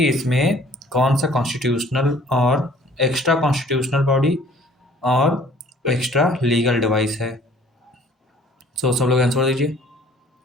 इसमें कौन सा कॉन्स्टिट्यूशनल और एक्स्ट्रा कॉन्स्टिट्यूशनल बॉडी और एक्स्ट्रा लीगल डिवाइस है। सब लोग आंसर दीजिए।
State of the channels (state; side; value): normal; both; correlation 0.54